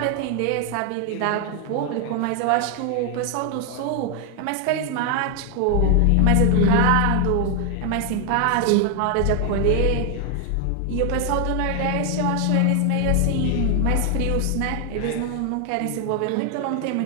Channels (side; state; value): both; different; correlation 0.00